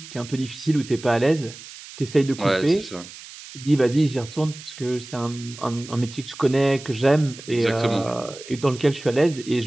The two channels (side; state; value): right; noise; hiss, 16 dB below the sound